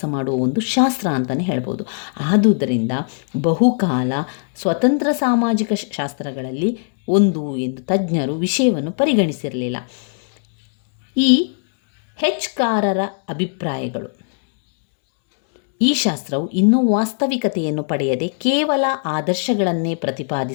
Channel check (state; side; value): silent; right; digital silence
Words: ಮಾಡುವ ಒಂದು ಶಾಸ್ತ್ರ ಅಂತಲೇ ಹೇಳ್ಬೋದು. ಆದುದರಿಂದ ಬಹುಕಾಲ ಸ್ವತಂತ್ರ ಸಾಮಾಜಿಕ ಶಾಸ್ತ್ರಗಳಲ್ಲಿ ಒಂದು ಎಂದು ತಜ್ಞರು ವಿಷಯವನ್ನು ಪರಿಗಣಿಸಿರಲಿಲ್ಲ. ಈ ಹೆಚ್ಕಾರರ ಅಭಿಪ್ರಾಯಗಳು ಈ ಶಾಸ್ತ್ರವು ಇನ್ನೂ ವಾಸ್ತವಿಕತೆಯನ್ನು ಪಡೆಯದೆ ಕೇವಲ ಆದರ್ಶಗಳನ್ನೇ